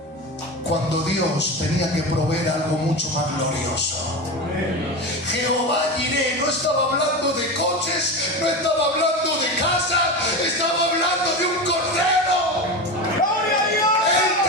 cuando Dios tenía que proveer algo mucho más glorioso. Jehová Jireh no estaba hablando de coches, no estaba hablando de casa, estaba hablando de un cordero. ¡Gloria a Dios! Él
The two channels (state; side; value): normal; both; correlation 0.23